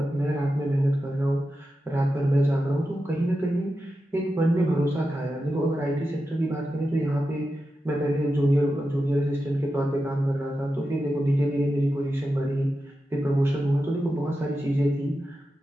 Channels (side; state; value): both; normal; correlation 0.90